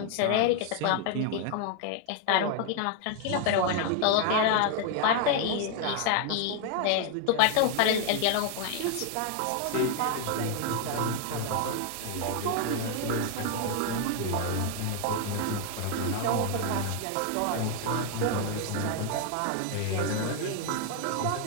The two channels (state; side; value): different; both; correlation 0.00